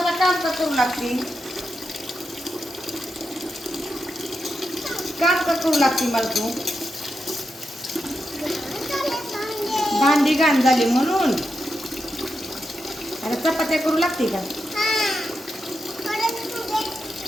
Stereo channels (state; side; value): normal; both; correlation 0.87